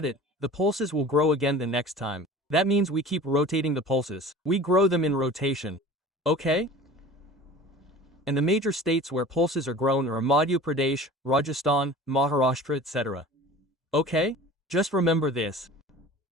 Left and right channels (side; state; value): both; normal; correlation 0.41